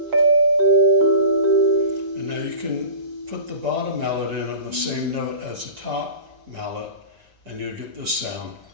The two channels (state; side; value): late; left; 6.2 ms